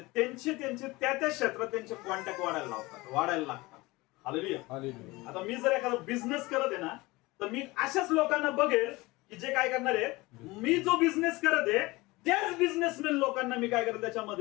त्यांचे त्या क्षेत्रात त्यांचे कॉन्टॅक्ट वाढायला लागतात. हालेलुया. आता मी जर एखादा बिझनेस करत आहे ना, तर मी अशाच लोकांना बघेल की जे काय करणार आहे, मी जो बिझनेस करत आहे त्याच बिझनेसमॅन लोकांना मी काय करत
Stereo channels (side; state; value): right; quieter; 21.8 dB